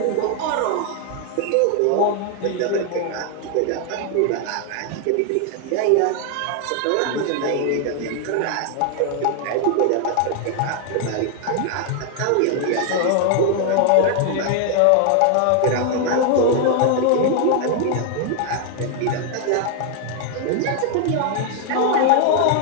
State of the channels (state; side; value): different; both; correlation 0.00